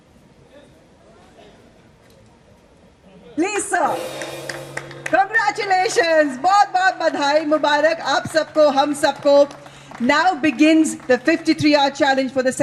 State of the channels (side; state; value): both; identical; correlation 1.00